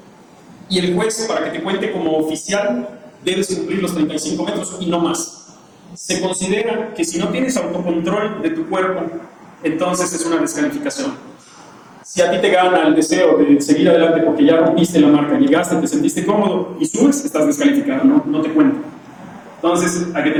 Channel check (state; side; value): identical; both; correlation 1.00